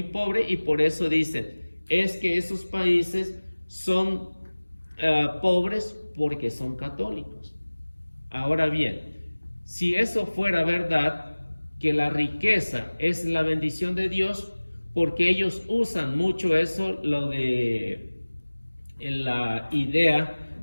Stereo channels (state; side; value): inverted; both; correlation -1.00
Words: pobre y por eso dicen, es que esos países son pobres porque son católicos. Ahora bien, si eso fuera verdad, que la riqueza es la bendición de Dios, porque ellos usan mucho eso, lo de la idea